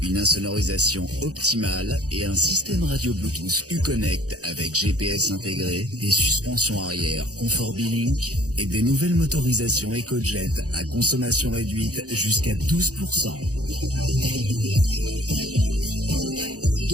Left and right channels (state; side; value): late; left; 0.67 ms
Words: une insonorisation optimale et un système radio Bluetooth Uconnect avec GPS intégré, des suspensions arrière Comfort B-Link et des nouvelles motorisations EcoJet à consommation réduite jusqu'à 12%.